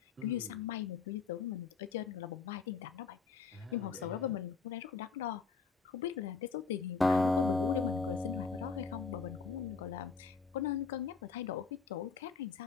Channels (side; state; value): right; quieter; 5.1 dB